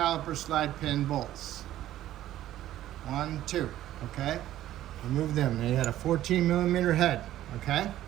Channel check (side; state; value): left; quieter; 13.3 dB